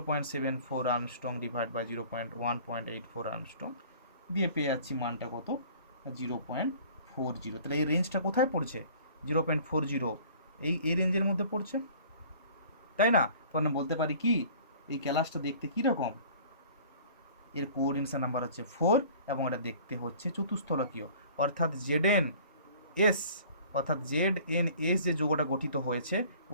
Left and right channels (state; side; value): inverted; both; correlation -0.49